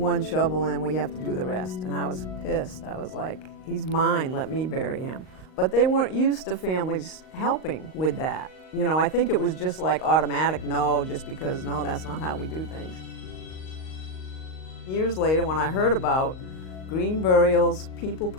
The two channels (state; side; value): late; right; 38 ms